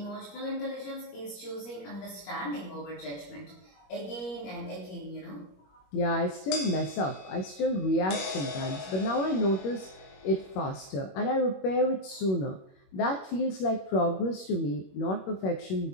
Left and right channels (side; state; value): right; late; 21 ms